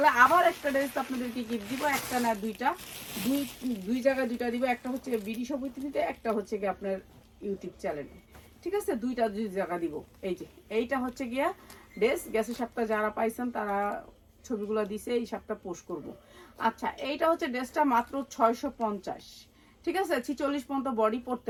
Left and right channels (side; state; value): both; identical; correlation 1.00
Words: আবার একটা ড্রেস আপনাদেরকে গিফট দিব, একটা না দুইটা, দুই জায়গায় দুইটা দিব। একটা হচ্ছে বিডি সমিতিতে, একটা হচ্ছে গিয়ে আপনার ইউটিউব চ্যানেলে, ঠিক আছে। দুই জায়গা দিব। এই যে এইটা হচ্ছে গিয়া ড্রেস, গ্যাসের সাপটা যারা পাইছেন তারা ছবিগুলো দিছে, এই সাপটা পোস্ট করব। আচ্ছা, এইটা হচ্ছে ড্রেসটা মাত্র 650, ঠিক আছে। 46 পর্যন্ত বডি পরতে